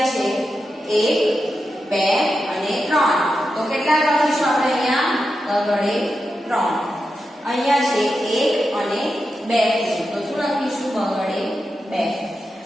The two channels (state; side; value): normal; both; correlation 0.89